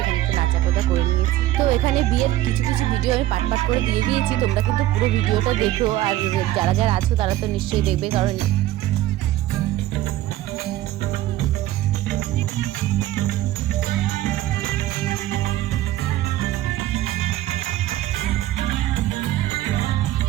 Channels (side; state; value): left; quieter; 14.8 dB